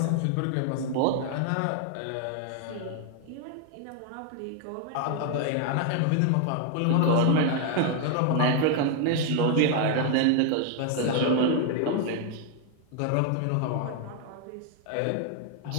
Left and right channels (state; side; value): different; both; correlation 0.00